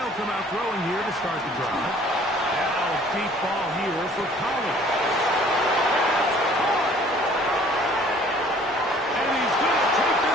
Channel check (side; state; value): both; normal; correlation 0.54